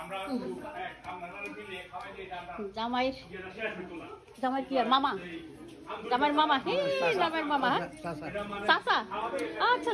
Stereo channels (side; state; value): both; identical; correlation 1.00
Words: মিলিয়ে খাওয়াই দিয়ে জামাই কি আর মামা জামাইর মামা জামাইর মামা চাচা আচ্ছা